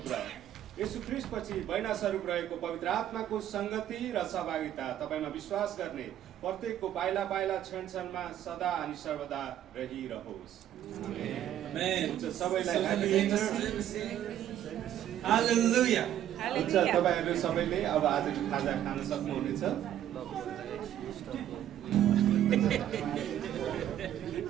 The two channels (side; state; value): left; quieter; 11.3 dB